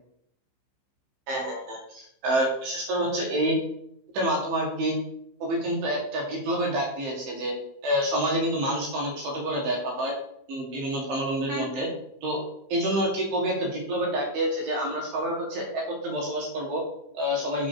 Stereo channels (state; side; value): late; left; 15 ms